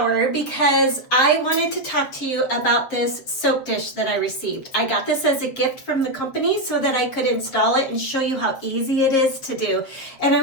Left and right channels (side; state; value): right; late; 7.5 ms